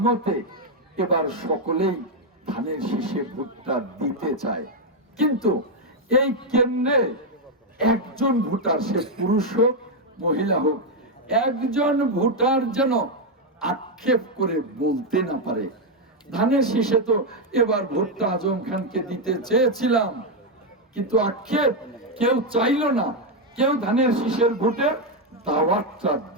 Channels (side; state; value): both; normal; correlation 0.03